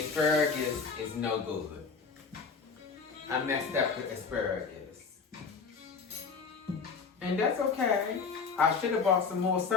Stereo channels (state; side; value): quieter; right; 5.2 dB